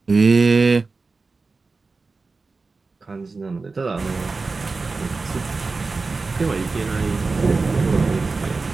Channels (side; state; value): left; quieter; 4.0 dB